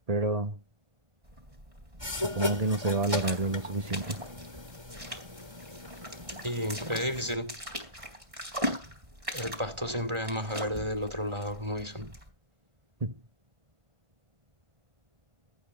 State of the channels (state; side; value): late; left; 1.3 ms